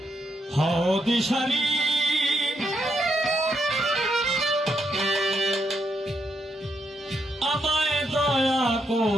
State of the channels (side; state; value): both; normal; correlation 0.79